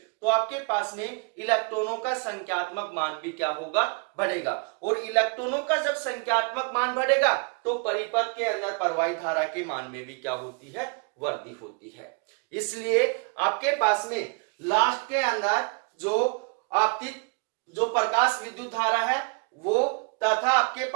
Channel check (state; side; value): quieter; left; 34.8 dB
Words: तो आपके पास में इलेक्ट्रॉनों का संख्यात्मक मान भी क्या होगा, बढ़ेगा। और इलेक्ट्रॉनों का जब संख्यात्मक मान बढ़ेगा तो परिपथ के अंदर प्रवाहित धारा के मान में भी क्या होती है, वृद्धि होती है। इसलिए आपके पास में लास्ट के अंदर जो आपतित जो प्रकाश विद्युत धारा है वो तथा आपके